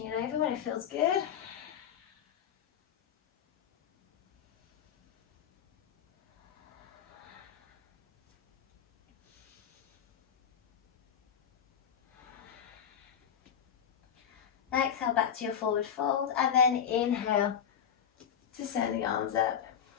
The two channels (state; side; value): quieter; right; 8.4 dB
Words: it over when it feels good. Exhale back to your forward fold, and then inhale to send the arms up